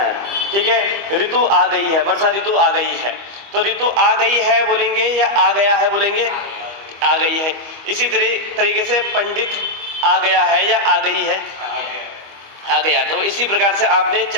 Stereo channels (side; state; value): left; late; 25 ms